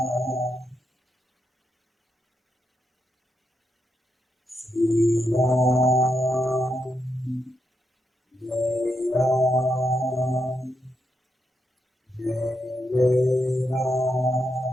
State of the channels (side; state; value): both; normal; correlation 0.82